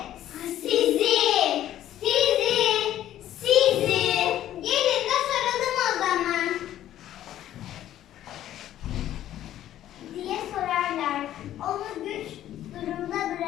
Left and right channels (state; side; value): quieter; right; 12.4 dB